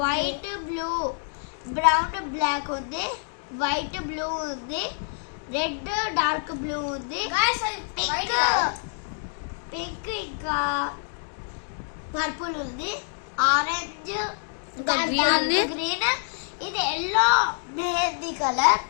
బ్లూ, బ్రౌన్ బ్లాక్ ఉంది, వైట్ బ్లూ ఉంది, రెడ్ డార్క్ బ్లూ ఉంది, పింక్ ఇంకా పర్పుల్ ఉంది, ఆరెంజ్ గ్రీన్, ఇది ఎల్లో మెహందీ కలర్.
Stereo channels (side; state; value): right; silent; digital silence